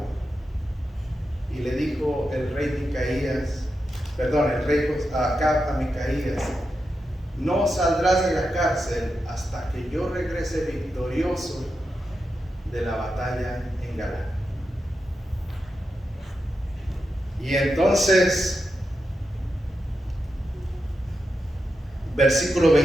Y le dijo el rey Acab a Micaías: no saldrás de la cárcel hasta que yo regrese victorioso de la batalla en Galaad. Y entonces, versículo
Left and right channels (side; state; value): both; normal; correlation 0.88